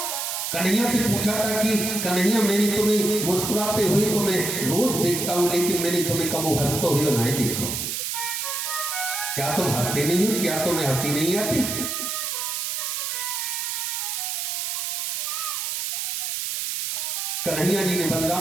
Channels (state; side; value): noise; right; hiss, 2 dB below the sound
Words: कन्हैया से पूछा था कि कन्हैया मैंने तुम्हें मुस्कुराते हुए तो मैं रोज देखता हूं, लेकिन मैंने तुम्हें कबो हंसते हुए नहीं देखा। क्या तुम हंसते नहीं हो? क्या तुम्हें हंसी नहीं आती? कन्हैया जी ने